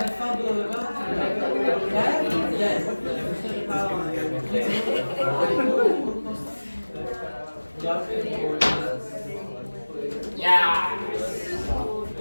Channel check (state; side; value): inverted; both; correlation -1.00